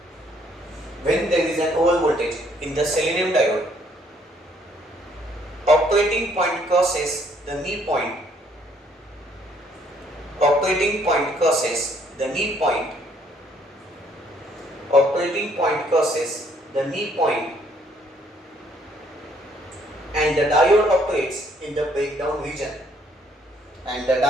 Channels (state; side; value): normal; both; correlation 0.65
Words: when there is an over voltage in the selenium diode, operating point crosses the knee point. Operating point crosses the knee point. Operating point crosses the knee point, and the diode operates in the breakdown region. And the